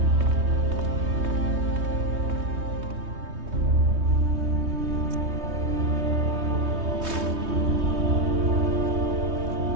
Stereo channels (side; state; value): left; late; 3.2 ms